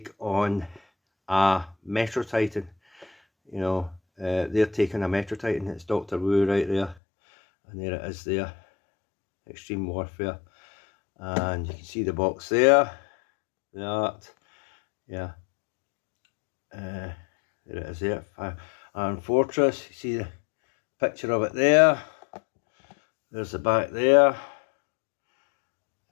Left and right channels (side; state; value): right; drops out; at 7.0 s